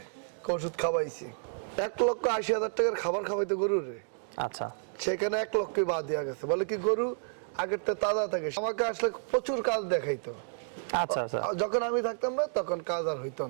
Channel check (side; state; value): left; silent; digital silence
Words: ওষুধ খাওয়াইছি 1,80,000 টাকার খাবার খাওয়াইতে গরু রে। আচ্ছা, সেখানে 1 লক্ষই বাদ দেওয়া গেছে। বলে কি গরু আগের তো তাজা থাকে, আমাকে আসলে প্রচুর কাজ দেখাইতো। আচ্ছা আচ্ছা, যখন আমি থাকতাম না তখন কাজ আর হইতো